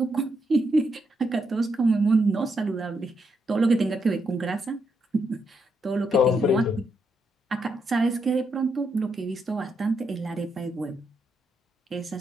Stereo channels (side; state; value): both; normal; correlation 0.80